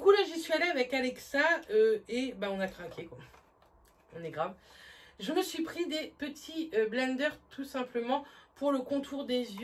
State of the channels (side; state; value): both; identical; correlation 1.00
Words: là, j'y suis allée avec Alexa et bah, on a craqué, quoi. On est grave. Je me suis pris des petits blenders, tout simplement, pour le contour des